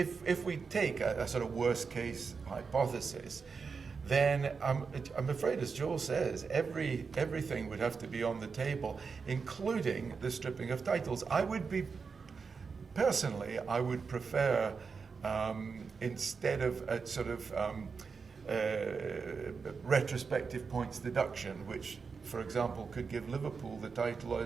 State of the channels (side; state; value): left; quieter; 5.2 dB